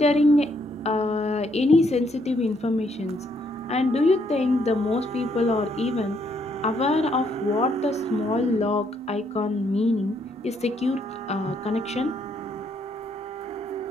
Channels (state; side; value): normal; both; correlation 0.72